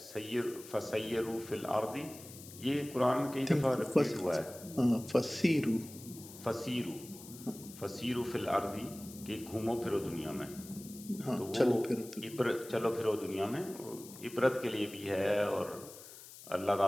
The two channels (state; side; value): noise; left; hiss, 16 dB below the sound